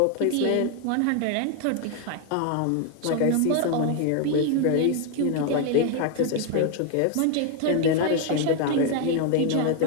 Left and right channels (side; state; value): both; different; correlation 0.01